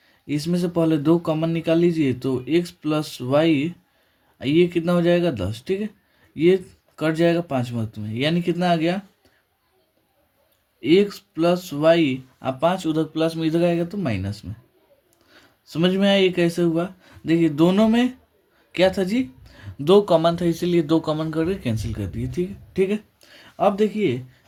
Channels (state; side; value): identical; both; correlation 1.00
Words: इसमें से पहले 2 कॉमन निकाल लीजिए। तो एक्स प्लस वाई, ये कितना हो जाएगा? 10। ठीक है, ये कट जाएगा 5 वक्त में, यानी कितना आ गया? X plus y. अब 5 उधर प्लस में, इधर आएगा तो माइनस में। समझ में आया ये कैसे हुआ? देखिए, दोनों में क्या था जी? 2 कॉमन था, इसीलिए 2 कॉमन करके कैंसिल कर दिए। ठीक है, ठीक है। अब देखिए